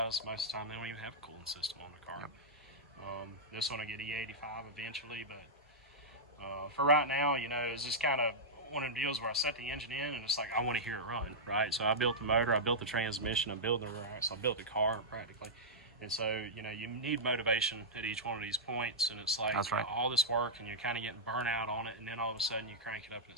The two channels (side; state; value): both; normal; correlation -0.10